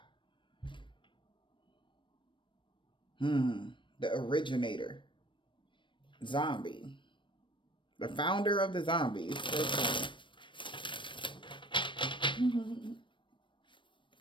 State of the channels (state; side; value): late; right; 0.24 ms